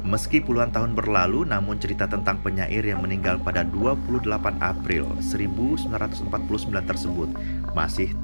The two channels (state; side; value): inverted; both; correlation -1.00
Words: Meski puluhan tahun berlalu, namun cerita tentang penyair yang meninggal pada 28 April 1949 tersebut masih